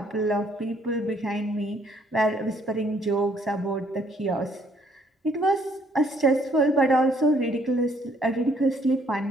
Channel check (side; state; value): both; normal; correlation 0.65